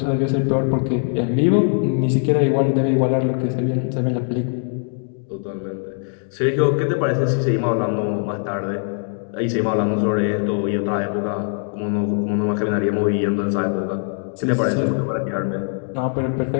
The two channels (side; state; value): right; silent; 62 dB below the other